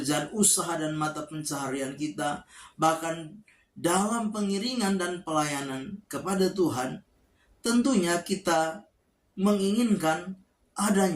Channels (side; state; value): both; identical; correlation 1.00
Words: usaha dan mata pencaharian kita, bahkan dalam pengiringan dan pelayanan kepada Tuhan, tentunya kita menginginkan